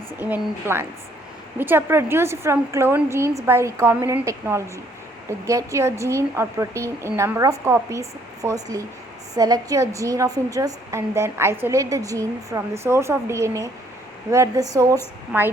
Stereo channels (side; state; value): both; normal; correlation 0.64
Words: even in plants, which are produced from cloned genes by recombinant technology. To get your gene or protein in number of copies, firstly select your gene of interest and then isolate the gene from the source of DNA, where the source